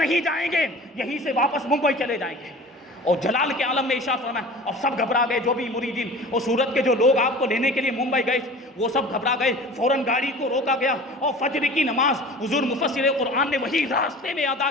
جائیں گے، یہیں سے واپس ممبئی چلے جائیں گے۔ اور جلال کے عالم میں ارشاد فرمایا، اور سب گھبرا گئے، جو بھی مریدین اور سورت کے جو لوگ آپ کو لینے کے لیے ممبئی گئے وہ سب گھبرا گئے، فوراً گاڑی کو روکا گیا اور فجر کی نماز حضور مفسر قرآن نے وہی راستے میں ادا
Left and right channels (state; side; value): normal; both; correlation 0.40